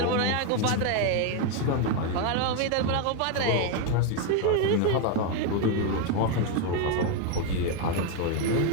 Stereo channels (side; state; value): both; different; correlation 0.01